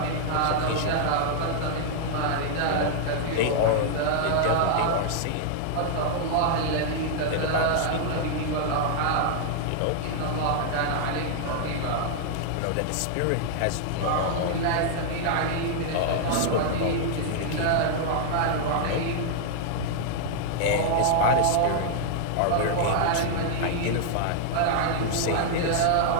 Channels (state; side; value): different; both; correlation -0.01